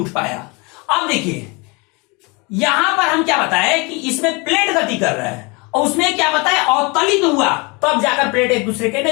पाया। अब देखिए यहां पर हम क्या बताए कि इसमें प्लेट गति कर रहा है और उसमें क्या बताया, अवतलित हुआ, तब जाकर प्लेट एक दूसरे के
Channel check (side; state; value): right; quieter; 28.5 dB